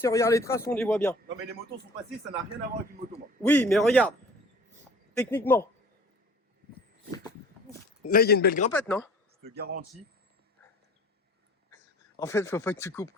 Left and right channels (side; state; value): both; normal; correlation 0.47